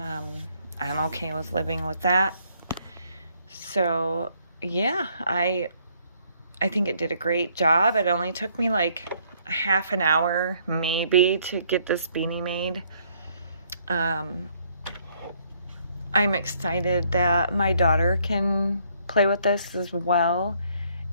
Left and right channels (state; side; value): inverted; both; correlation -0.67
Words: I'm okay with living with that. So yeah, I think it did a great job. It only took me like, half an hour maybe to get this beanie made. I'm excited that my daughter can play with this as well,